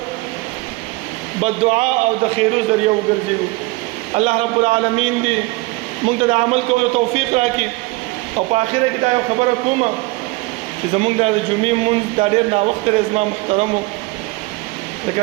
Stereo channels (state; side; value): quieter; left; 23.1 dB